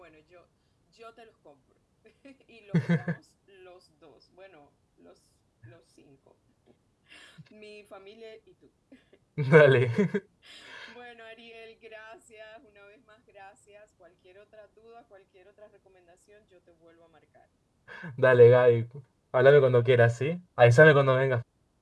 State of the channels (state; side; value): identical; both; correlation 1.00